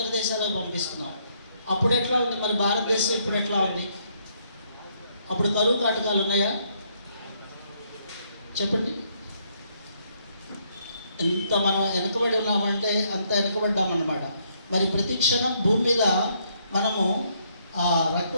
దేశాలకు పంపిస్తున్నాం. అప్పుడు ఎట్లా ఉంది, మరి భారతదేశం ఇప్పుడు ఎట్లా ఉంది? అప్పుడు కరువు కాటకాలు ఉన్నాయా? చెప్పండి. ఎంత మనం వెనకబడి ఉన్నామంటే అంత వెనకబడ్డామన్నమాట. మరి ప్రతి క్షణం భూమి మీద మనము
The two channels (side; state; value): both; inverted; correlation -0.71